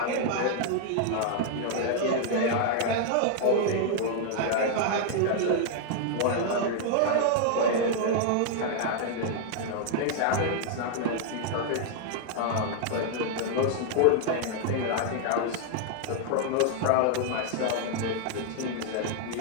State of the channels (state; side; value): different; both; correlation -0.01